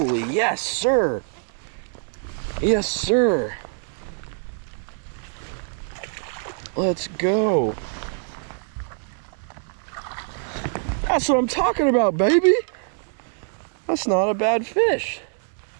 yes, sir. Yes, sir. Let's go. That's what I'm talking about, baby. That's not a bad fish.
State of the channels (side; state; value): left; silent; 61 dB below the other